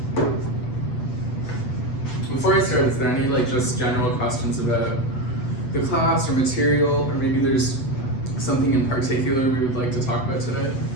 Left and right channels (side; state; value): right; late; 7.9 ms